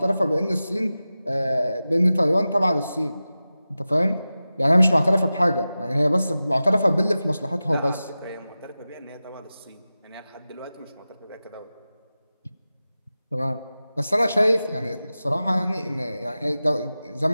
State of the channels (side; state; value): both; inverted; correlation -0.95